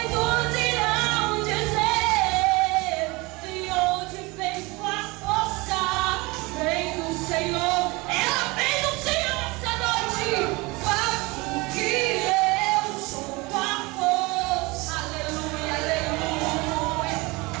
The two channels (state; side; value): quieter; left; 24.4 dB